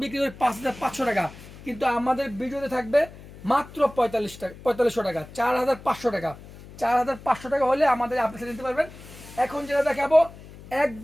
বিক্রি করি 5500 টাকা, কিন্তু আমাদের ভিডিওতে থাকবে মাত্র 4500 টাকা, 4500 টাকা। 4500 টাকা হলে আমাদের আপনি সেট নিতে পারবেন। এখন যেটা দেখাবো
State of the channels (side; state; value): left; noise; hum, 18 dB below the sound